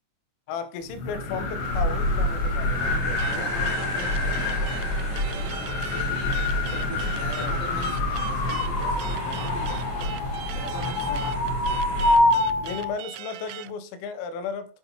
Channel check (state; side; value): late; right; 24 ms